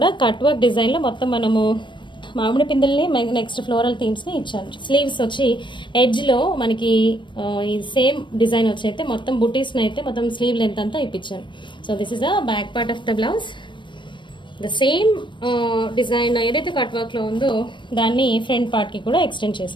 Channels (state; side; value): late; right; 0.23 ms